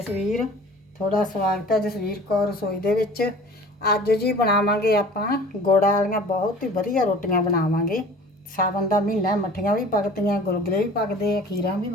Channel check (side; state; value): both; normal; correlation 0.45